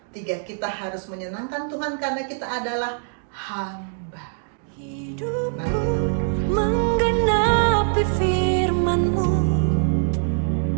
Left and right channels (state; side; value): silent; left; digital silence